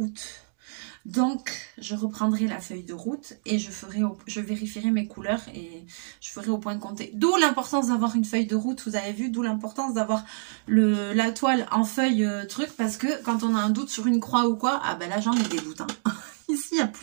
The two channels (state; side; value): silent; left; digital silence